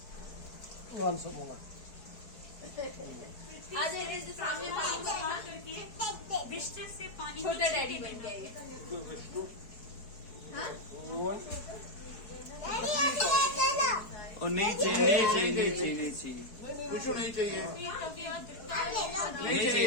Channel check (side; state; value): right; late; 4.6 ms